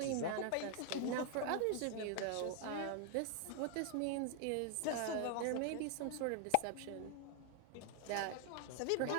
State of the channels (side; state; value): both; different; correlation 0.00